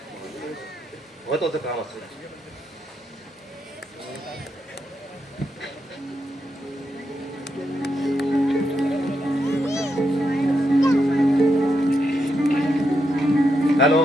महत्वाचं काम असतं. हॅलो,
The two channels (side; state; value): both; normal; correlation 0.83